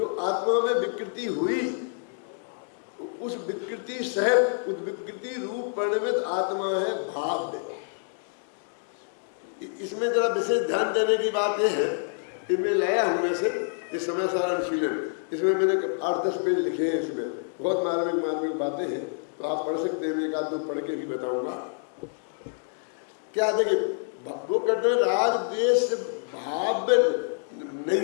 आत्मा में विकृति हुई, उस विकृति सहित उस विकृति रूप परिणमित आत्मा है भाव्य। इसमें जरा विशेष ध्यान देने की बात यह है कि मैं लाया हूं में से इस समय सारा अनुशीलन, इसमें मैंने 8-10 पेज लिखे हैं, इसमें बहुत मार्मिक बातें हैं, तो आप पढ़ सकते हैं, एक आध दो पढ़ के भी बताऊंगा। क्या देखिए, वो कहते हैं राग द्वेष भाव नहीं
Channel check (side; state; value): right; silent; digital silence